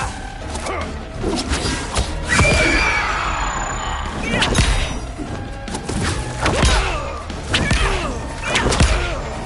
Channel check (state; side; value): identical; both; correlation 1.00